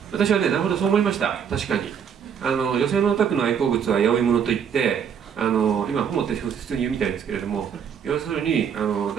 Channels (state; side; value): quieter; left; 7.7 dB